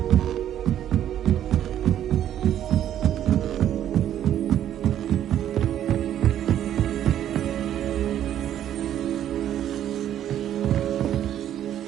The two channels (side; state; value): left; quieter; 11.0 dB